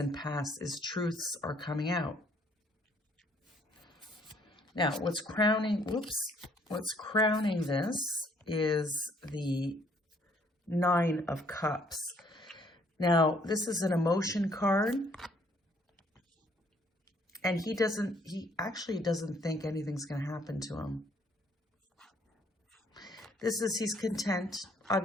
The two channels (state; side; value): normal; both; correlation 0.64